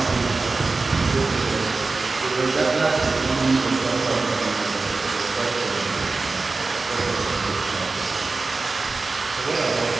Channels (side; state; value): left; quieter; 3.8 dB